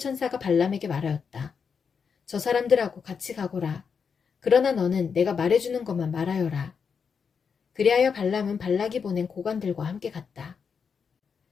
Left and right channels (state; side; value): quieter; right; 6.1 dB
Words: 발람에게 말하였다. 저 사람들하고 같이 가거라. 그러나 너는 내가 말해주는 것만 말하여라. 그리하여 발람은 발락이 보낸 고관들과 함께 갔다.